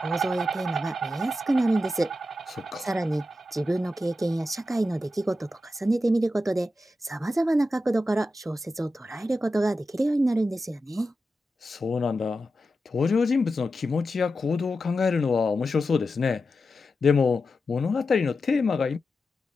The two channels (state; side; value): normal; both; correlation 0.90